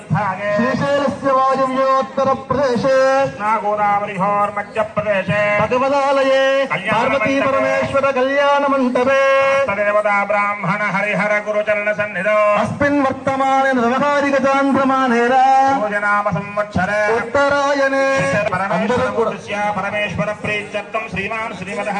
శ్రీశైలస్య వాయువ్యోత్తర ప్రదేశే నాగోదావరిహోర్ మధ్యప్రదేశే భగవదాలయే పార్వతీ పరమేశ్వర కళ్యాణ మంటపే దేవతా బ్రాహ్మణ హరిహర గురుచరణ సన్నిధో అస్మిన్ వర్తమానే వ్యవహారిక చాంద్రమానేన భోజనామ సంవత్సరే ఉత్తరాయణే పరమేశ్వర ప్రీత్యర్థం శ్రీమాన్ శ్రీమదః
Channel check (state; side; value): identical; both; correlation 1.00